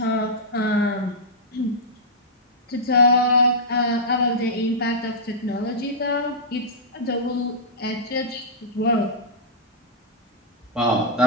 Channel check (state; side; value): normal; both; correlation -0.12